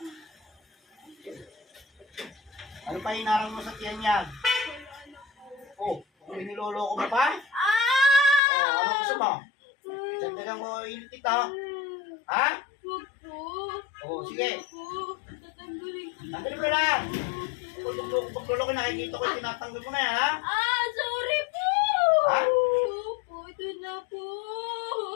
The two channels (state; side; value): drops out; right; at 8.4 s